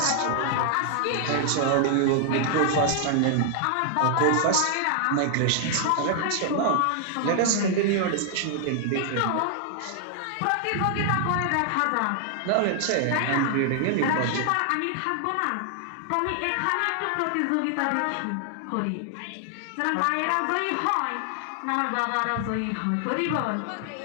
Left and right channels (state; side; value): different; both; correlation 0.00